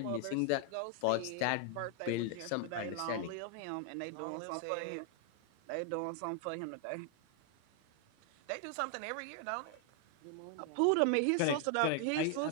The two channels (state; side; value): different; both; correlation 0.00